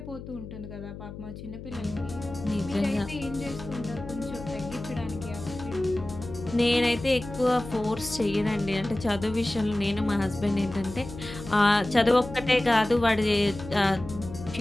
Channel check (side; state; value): left; noise; hum, 12 dB below the sound